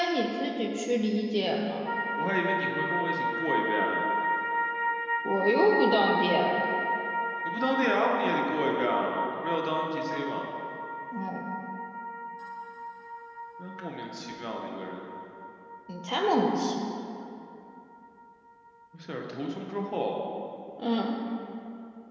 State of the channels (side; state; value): both; identical; correlation 1.00